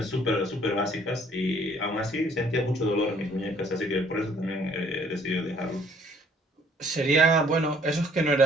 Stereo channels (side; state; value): both; normal; correlation 0.60